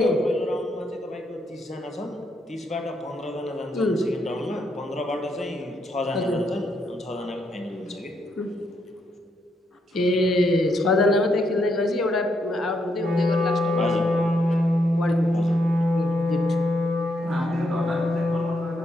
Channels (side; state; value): both; normal; correlation 0.77